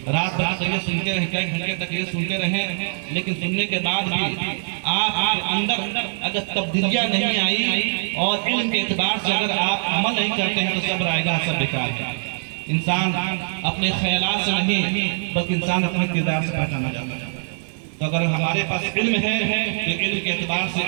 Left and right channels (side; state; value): left; silent; 61 dB below the other